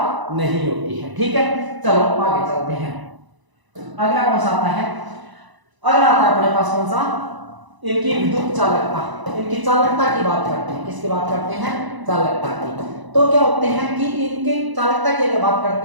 नहीं होती है, ठीक है। चलो आगे चलते हैं। अगला कौन सा आता है? अगला आता है अपने पास कौन सा? इनकी विद्युत चालकता, इनकी चालकता की बात करते हैं। किसकी बात करते हैं? चालकता की। तो क्या होते हैं कि इनकी चालकता की अगर बात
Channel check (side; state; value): left; late; 1.0 ms